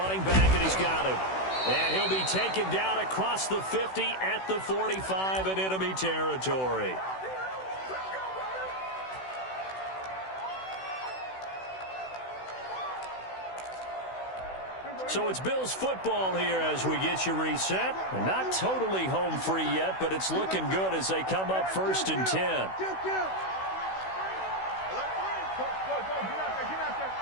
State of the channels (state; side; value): late; right; 16 ms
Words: back, and he's got him. And he'll be taken down across the 50 at the 45 in enemy territory. So it's Bills football here as we get you reset. Not totally home free yet, but it's looking good as they come up 1st and 10.